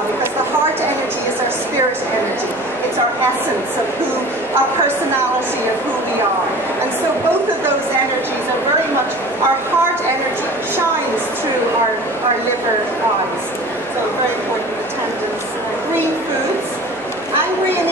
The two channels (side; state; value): right; noise; hum, 28 dB below the sound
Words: because the heart energy is our spirit energy. It's our essence of who, our personality of who we are. And so both of those energies are very much, our heart energy shines through our liver eyes. So very important attendance. Green foods. Angry and